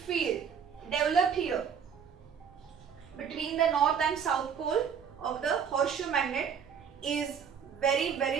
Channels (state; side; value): quieter; left; 7.3 dB